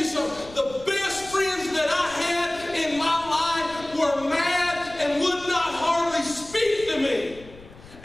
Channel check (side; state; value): left; noise; rumble, 20 dB below the sound